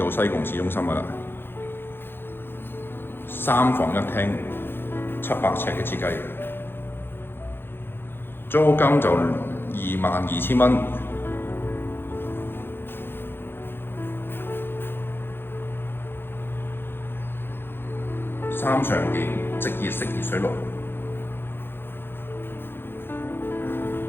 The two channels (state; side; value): late; right; 0.10 ms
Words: 西貢市中心噶啦。3房1廳，700尺嘅設計，租金就22,000蚊。3常電，即熱式熱水爐。